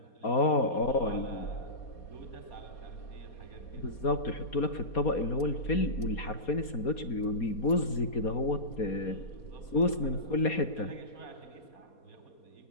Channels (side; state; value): right; late; 4.2 ms